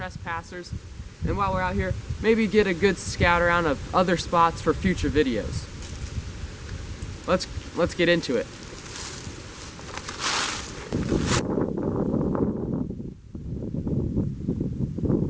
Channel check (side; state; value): both; identical; correlation 1.00